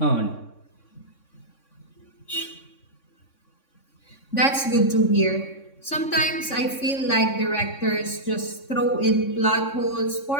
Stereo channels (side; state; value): right; late; 3.6 ms